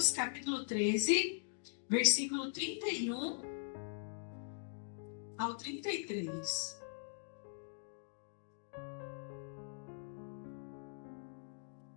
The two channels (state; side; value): silent; right; digital silence